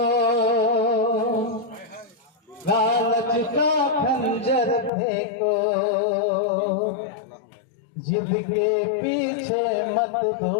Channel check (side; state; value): right; drops out; at 4.9 s